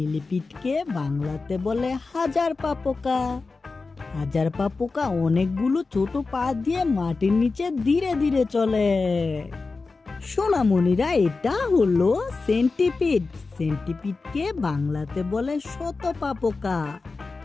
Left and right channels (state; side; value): quieter; right; 4.0 dB